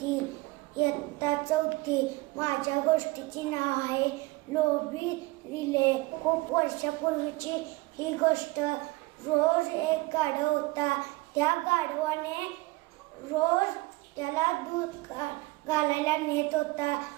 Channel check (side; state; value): left; quieter; 22.3 dB